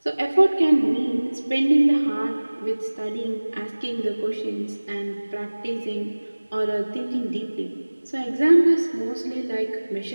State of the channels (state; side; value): inverted; both; correlation -1.00